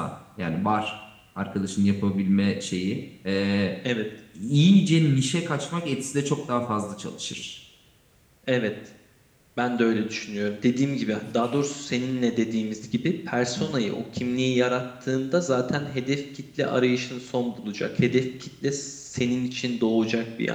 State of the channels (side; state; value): both; identical; correlation 1.00